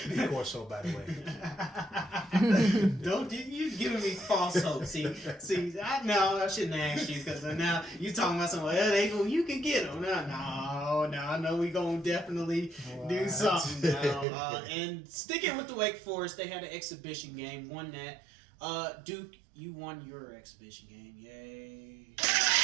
course, so by the way. Don't you giving me false hope? See, I shouldn't have asked you, because now you talking about something. Well, you can get them. No, I know we gonna definitely do something now. And sticking with the Wake Forest, they had an exhibition game, won that. Duke, you won your exhibition game. Yay!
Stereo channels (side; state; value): left; drops out; at 14.2 s